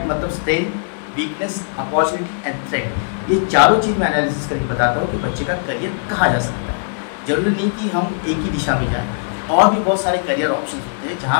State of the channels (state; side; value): silent; right; digital silence